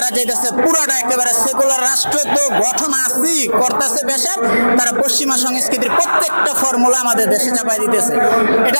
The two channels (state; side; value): inverted; both; correlation -1.00